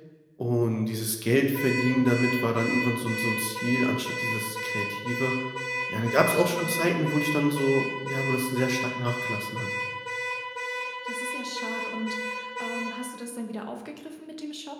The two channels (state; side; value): identical; both; correlation 1.00